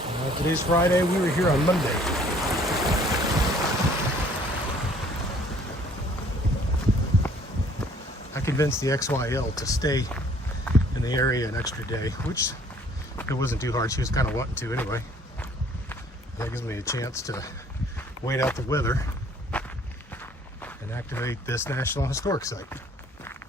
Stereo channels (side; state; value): both; normal; correlation 0.57